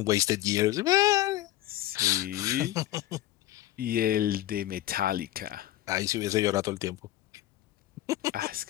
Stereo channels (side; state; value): right; quieter; 14.9 dB